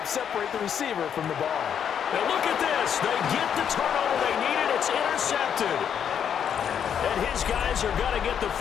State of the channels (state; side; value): quieter; right; 8.3 dB